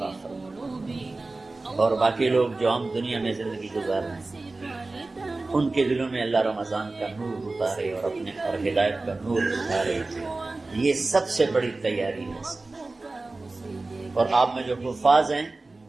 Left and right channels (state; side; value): quieter; left; 3.3 dB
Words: فرمائے. اور باقی لوگ جو عام دنیا میں زندگی گزار رہے ہیں ان کے دلوں میں اللہ رمضان کا نور اتارے اور اپنے اور ہدایت کا نور اتارے. یہ سب سے بڑی تیاری ہے. اور آپ میں جو حفاظ ہیں